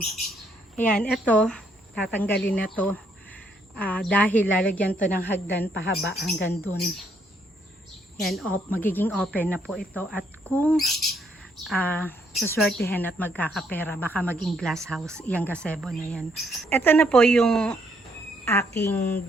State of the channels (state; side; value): normal; both; correlation 0.71